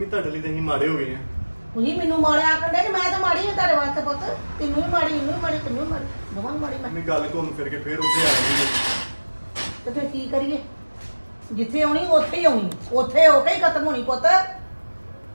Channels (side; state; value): both; inverted; correlation -1.00